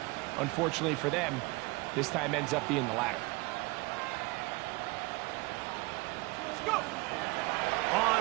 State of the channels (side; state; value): left; quieter; 24.7 dB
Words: unfortunately for them, this time ends up being the latter.